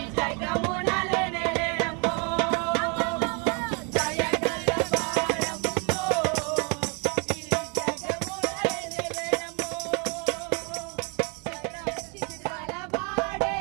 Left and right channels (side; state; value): left; quieter; 35.1 dB